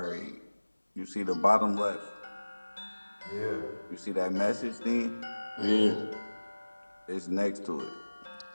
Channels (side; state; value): both; inverted; correlation -1.00